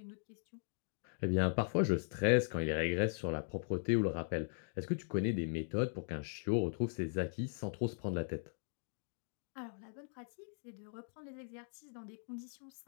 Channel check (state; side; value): silent; right; digital silence